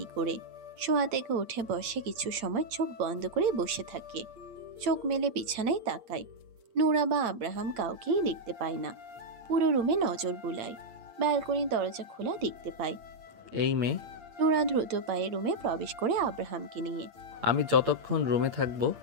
করে। শোয়া থেকে উঠে বসে কিছু সময় চোখ বন্ধ করে বসে থাকে। চোখ মেলে বিছানায় তাকায়। নোরা বা আব্রাহাম কাউকেই দেখতে পায় না। পুরো রুমে নজর বুলায়। ব্যালকনির দরজা খোলা দেখতে পায়। এই মেয়ে, নোরা দ্রুত পায়ে রুমে প্রবেশ করে আব্রাহামকে নিয়ে। আমি যতক্ষণ রুমে থাকবো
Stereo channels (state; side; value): late; left; 8.7 ms